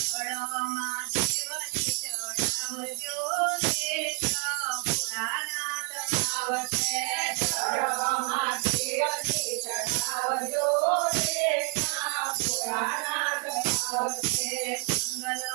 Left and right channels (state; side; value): quieter; left; 38.9 dB